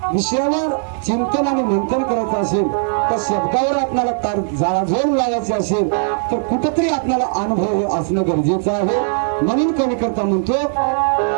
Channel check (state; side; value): silent; left; 61 dB below the other